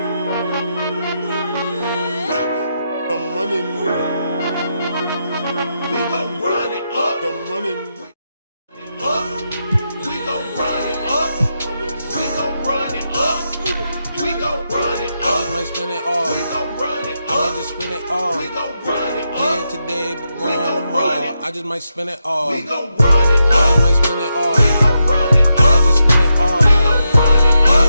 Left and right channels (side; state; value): both; inverted; correlation -0.85